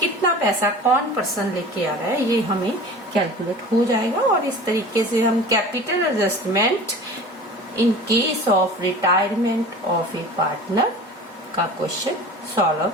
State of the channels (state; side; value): normal; both; correlation 0.39